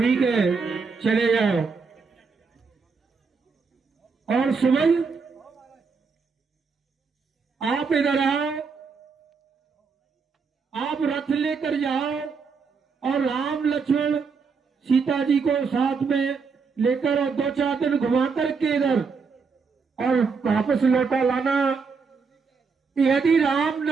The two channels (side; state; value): left; quieter; 5.1 dB